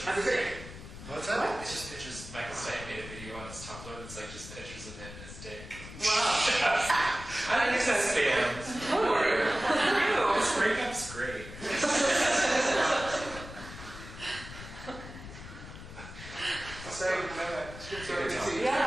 That's great. What's that? It's just pictures. Michael Stipe made a video on his Tumblr that's like just pictures of him and his dick. Wow. I think that's fans. This breakup's great. Sorry, I didn't know that. Sorry.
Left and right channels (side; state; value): left; noise; rumble, 13 dB below the sound